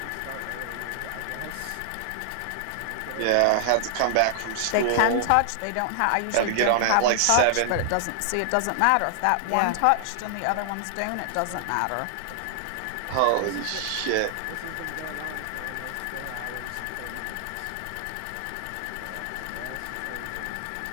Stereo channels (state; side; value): different; both; correlation -0.01